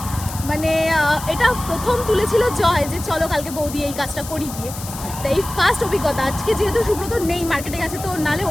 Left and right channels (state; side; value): noise; left; hiss, 12 dB below the sound